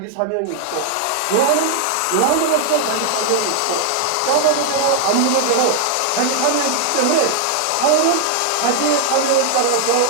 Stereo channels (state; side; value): different; both; correlation 0.00